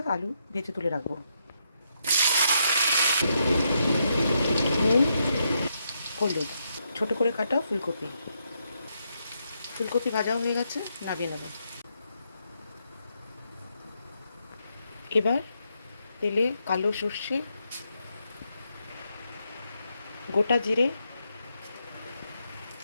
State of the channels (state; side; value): inverted; both; correlation -0.79